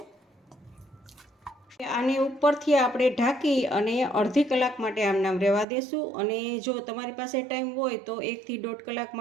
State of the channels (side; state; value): left; drops out; at 5.7 s